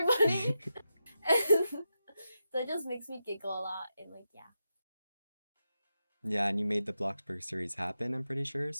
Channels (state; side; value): inverted; both; correlation -0.88